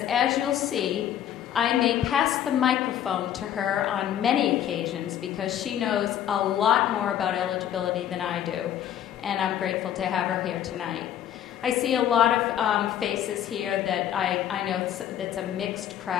as you'll see, I may pass the microphone to her on many occasions because she knows a lot more about eligibility than I do, and I'm grateful to have her here tonight. I see a lot of faces here that I know that's a mixed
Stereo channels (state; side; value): quieter; right; 10.6 dB